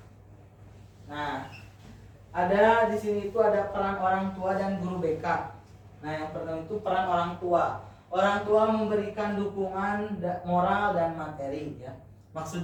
Nah, ada di sini itu ada peran orang tua dan guru BK. Nah, yang pertama itu peran orang tua. Orang tua memberikan dukungan moral dan materi ya.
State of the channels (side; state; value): both; identical; correlation 1.00